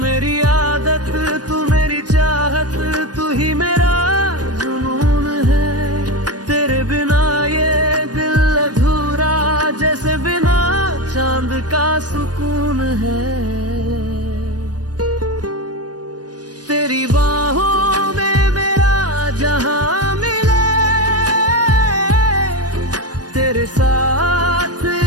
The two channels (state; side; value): late; left; 0.69 ms